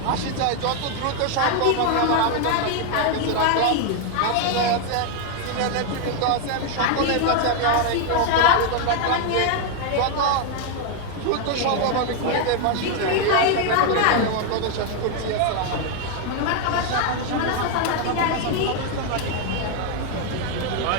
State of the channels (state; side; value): different; both; correlation 0.00